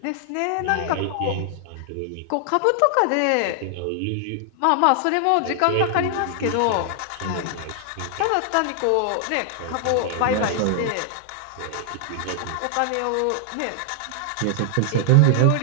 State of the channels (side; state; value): both; different; correlation 0.00